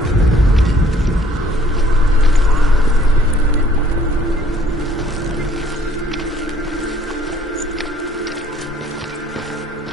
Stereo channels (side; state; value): both; normal; correlation 0.60